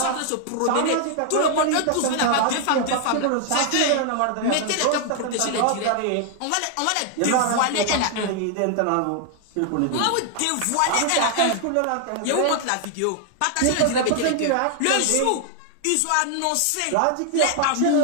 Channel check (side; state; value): both; different; correlation 0.00